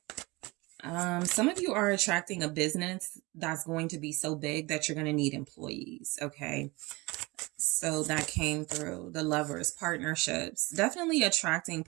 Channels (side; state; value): left; quieter; 23.8 dB